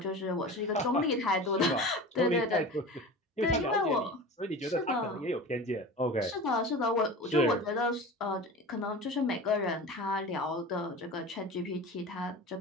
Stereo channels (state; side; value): normal; both; correlation 0.33